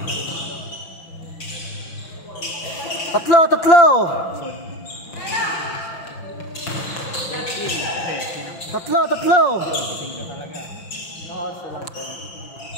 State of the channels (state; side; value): late; right; 6.0 ms